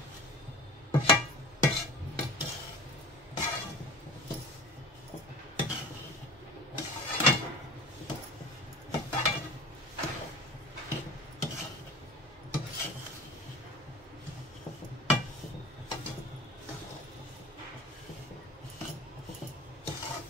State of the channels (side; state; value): both; normal; correlation 0.39